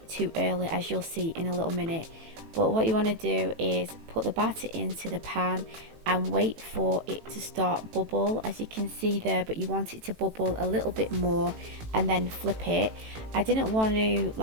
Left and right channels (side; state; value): left; late; 18 ms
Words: too early, as you'll see in a little minute. But what you want to do is put the batter into the pan and wait for it to start bubble, as you can see there, but you want it to bubble a little bit more and then flip it. I didn't want to